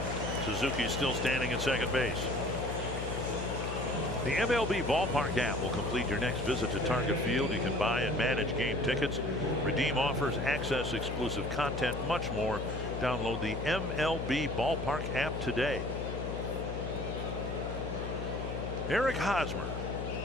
Suzuki's still standing at second base. The MLB Ballpark app will complete your next visit to Target Field. You can buy and manage game tickets, redeem offers, access exclusive content, much more. Download the MLB Ballpark app today. Eric Hosmer,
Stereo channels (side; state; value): left; noise; hum, 5 dB below the sound